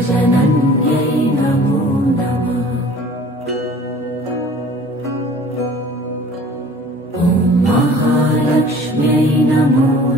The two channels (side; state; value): both; normal; correlation 0.47